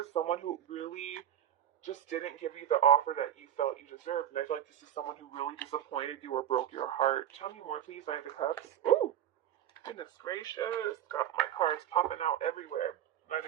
someone who really just didn't give you the offer that you felt you deserved, and I feel like this is someone who really disappointed you or broke your heart. Tell me more, please. Knight of Cups. Ooh! Goodness gracious, got my cards popping out everywhere.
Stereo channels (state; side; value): quieter; left; 10.7 dB